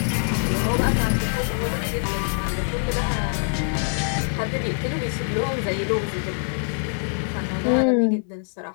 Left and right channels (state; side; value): silent; right; digital silence